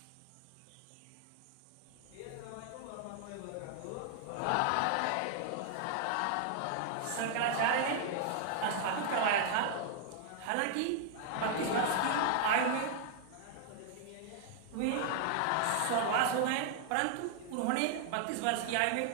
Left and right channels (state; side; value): different; both; correlation 0.00